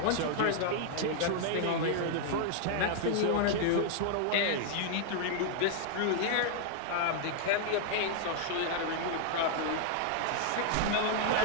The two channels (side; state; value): both; different; correlation 0.00